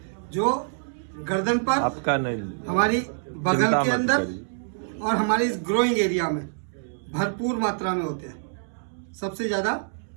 जो गर्दन पर, आपका नहीं, हमारी बगल के अंदर और हमारी इस ग्रोइंग एरिया में भरपूर मात्रा में होते हैं। सबसे ज्यादा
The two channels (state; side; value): silent; left; digital silence